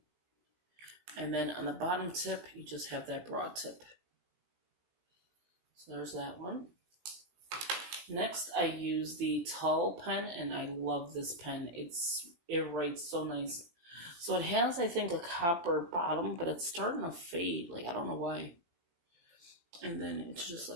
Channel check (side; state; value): left; late; 18 ms